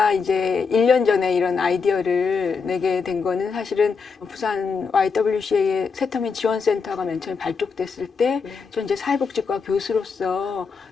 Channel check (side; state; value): right; quieter; 5.3 dB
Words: 이제 1년 전에 이런 아이디어를 내게 된 거는 사실은 부산 YWCA의 세터민 지원센터가 맨 처음에 발족됐을 때 전 이제 사회복지과 교수로서